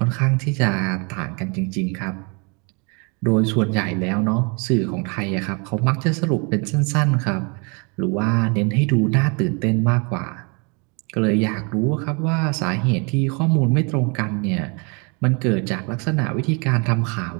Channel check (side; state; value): left; quieter; 33.0 dB